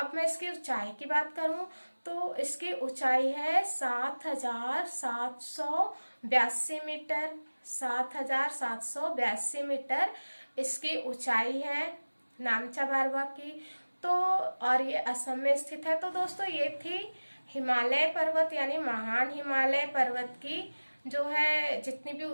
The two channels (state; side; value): inverted; both; correlation -1.00